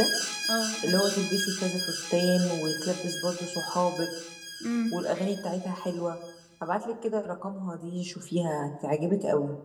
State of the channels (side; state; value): both; identical; correlation 1.00